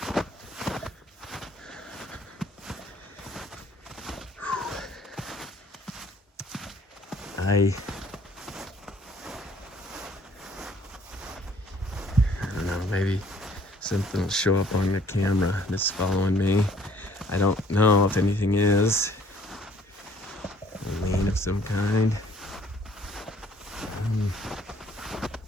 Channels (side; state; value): both; normal; correlation 0.59